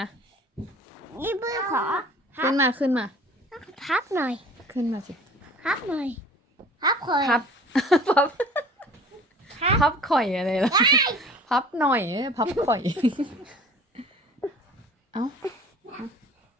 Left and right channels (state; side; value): normal; both; correlation 0.46